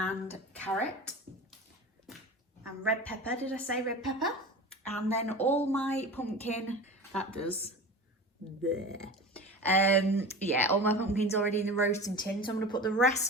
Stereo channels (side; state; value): both; normal; correlation 0.32